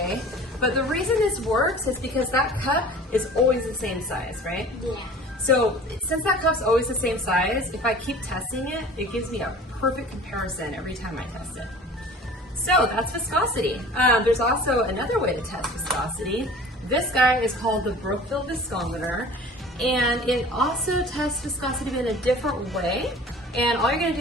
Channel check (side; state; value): both; normal; correlation 0.44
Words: but the reason this works is because that cup is always the same size, right? Yeah. So since that cup's always the same size, if I keep testing it, it gives me a perfect comparison every time I test it. So that's viscosity. There's also another way to test viscosity. This guy is called the Brookfield viscometer, and it also tests viscosity in a different way. And all you're gonna